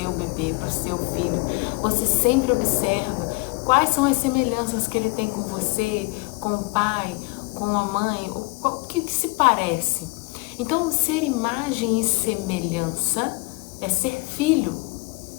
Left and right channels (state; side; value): quieter; right; 27.1 dB